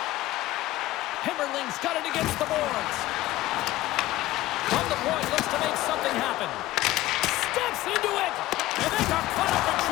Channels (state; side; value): quieter; right; 16.6 dB